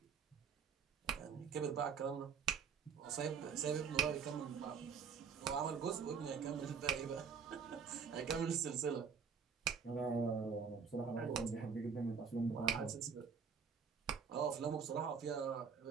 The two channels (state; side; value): quieter; left; 6.2 dB